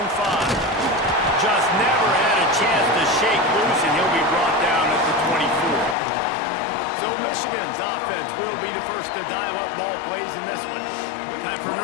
5. Just never had a chance to shake loose, and he'll be brought down at the 24. So Michigan's offense will be the first to dial up ball plays in this one. Time for an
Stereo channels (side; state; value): right; drops out; at 6.0 s